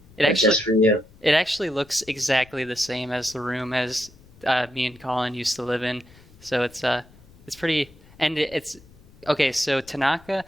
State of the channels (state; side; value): noise; left; rumble, 25 dB below the sound